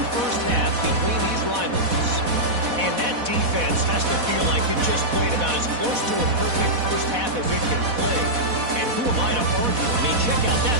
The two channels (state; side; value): late; left; 4.1 ms